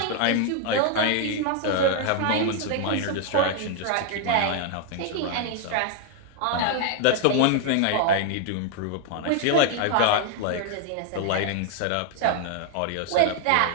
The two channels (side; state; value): both; different; correlation 0.00